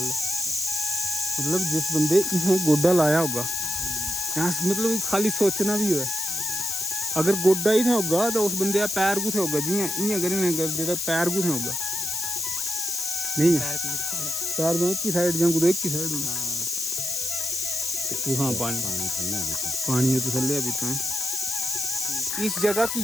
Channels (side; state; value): left; noise; hiss, 2 dB below the sound